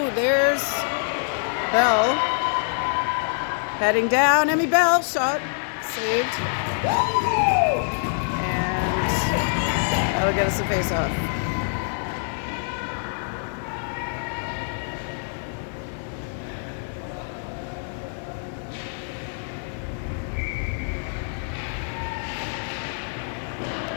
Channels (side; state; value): right; silent; 57 dB below the other